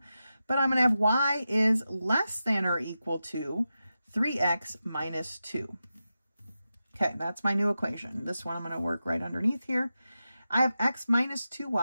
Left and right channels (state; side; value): inverted; both; correlation -0.91